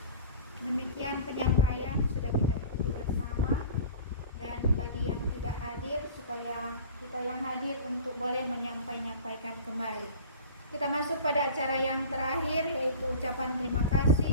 Demikian penyampaian sudah kita ikuti bersama, dan bagi yang tidak hadir supaya kita yang hadir untuk boleh menyampaikan kembali. Kita masuk pada acara yang terakhir, yaitu ucapan terima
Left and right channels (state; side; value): inverted; both; correlation -0.39